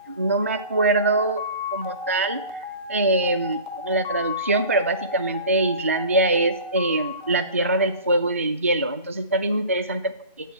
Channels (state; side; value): inverted; both; correlation -0.40